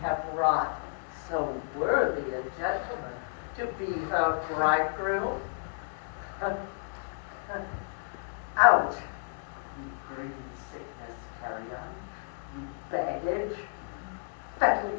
have wrought so worthy a gentleman to be her bridegroom? Out, you green sickness carrion, you baggage. Fettle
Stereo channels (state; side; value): silent; right; 57 dB below the other